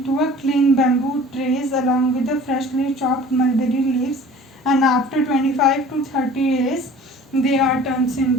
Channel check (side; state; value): both; normal; correlation 0.46